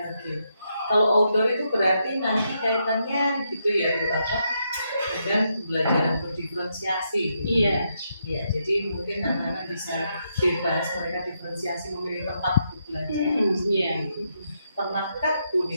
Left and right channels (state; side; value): inverted; both; correlation -0.80